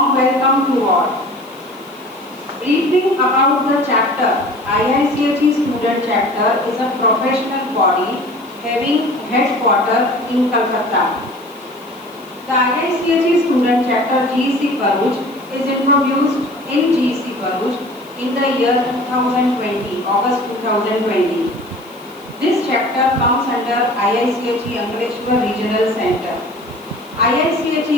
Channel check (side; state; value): left; noise; hiss, 26 dB below the sound